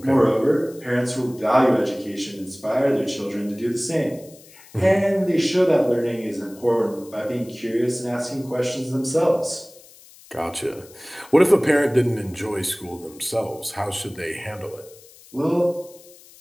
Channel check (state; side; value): noise; left; hiss, 23 dB below the sound